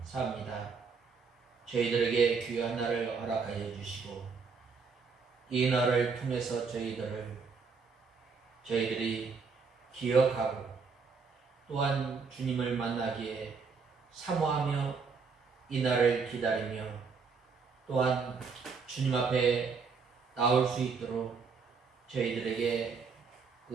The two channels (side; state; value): left; quieter; 5.2 dB